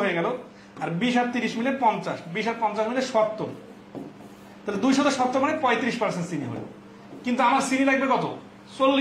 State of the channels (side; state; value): both; identical; correlation 1.00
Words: হয়ে গেল, আর 20 আর 30 মিলে 50, 20 আর 50 মিলে 70, তাহলে 270 মানে 35% চিনি হলো। কিন্তু আমার চিনি লাগবে কত?